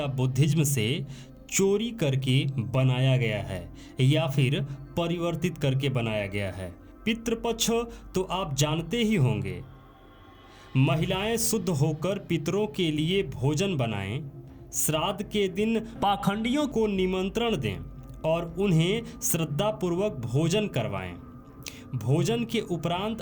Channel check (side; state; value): both; identical; correlation 1.00